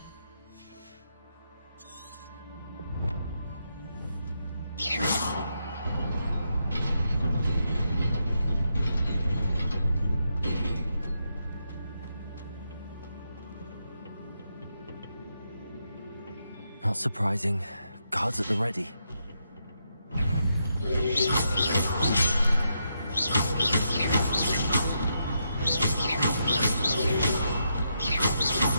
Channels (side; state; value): both; inverted; correlation -0.82